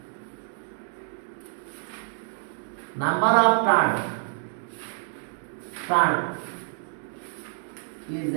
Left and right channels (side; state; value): left; silent; 60 dB below the other